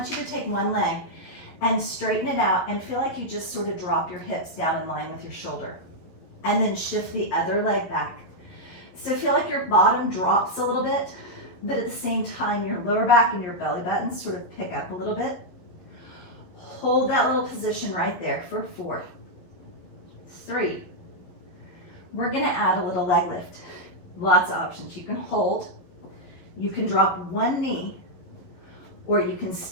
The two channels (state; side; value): late; right; 12 ms